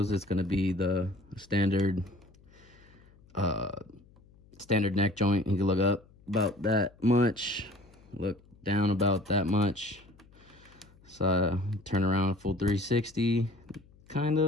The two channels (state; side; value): noise; left; hum, 27 dB below the sound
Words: it's gonna be the standard neck joint. You can look up about that much, look down about that much. So turn around full 360, kind